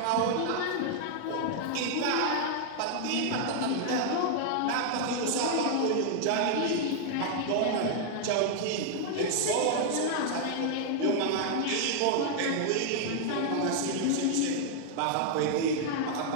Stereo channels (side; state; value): both; different; correlation 0.00